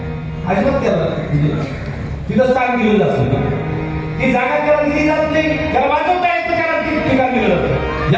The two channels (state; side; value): identical; both; correlation 1.00